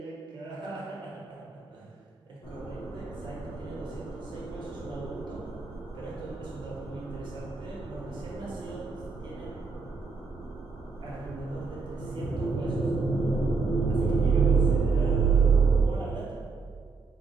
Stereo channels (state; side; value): quieter; left; 4.5 dB